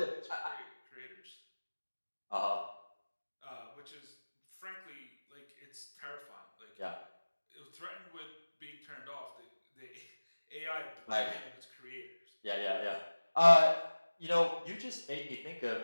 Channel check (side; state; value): both; inverted; correlation -1.00